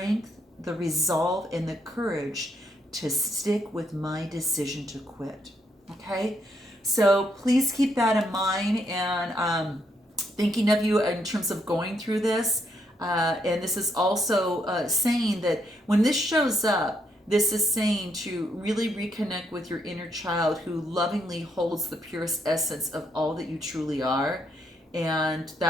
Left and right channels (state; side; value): normal; both; correlation 0.76